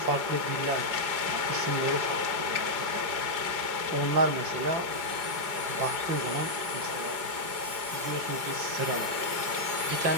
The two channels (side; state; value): left; late; 5.0 ms